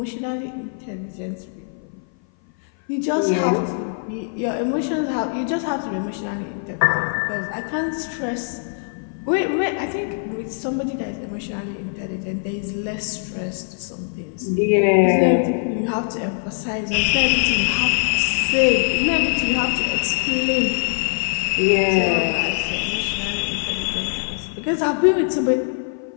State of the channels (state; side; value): silent; right; 57 dB below the other